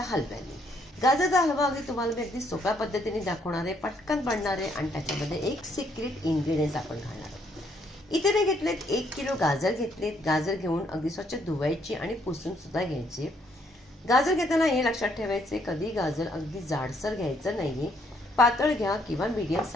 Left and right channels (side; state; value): both; normal; correlation 0.69